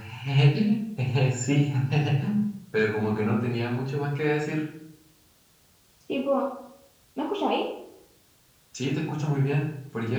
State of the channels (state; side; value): identical; both; correlation 1.00